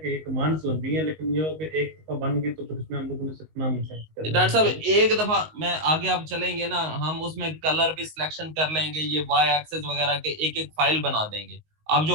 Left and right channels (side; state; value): left; late; 19 ms